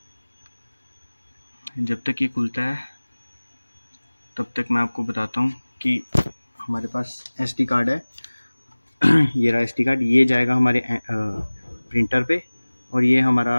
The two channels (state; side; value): inverted; both; correlation -1.00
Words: जब तक ये खुलता है तब तक मैं आपको बताता हूँ कि हमारे पास SD कार्ड है। ये रहा SD कार्ड, ये जाएगा हमारे प्रिंटर पे और ये हमारा